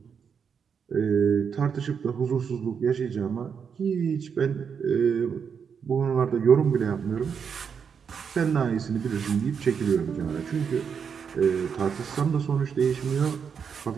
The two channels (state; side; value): quieter; left; 6.7 dB